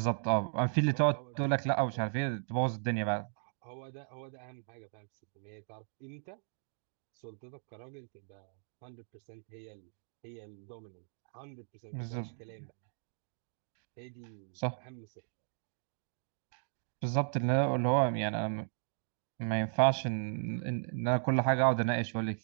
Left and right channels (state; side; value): silent; left; digital silence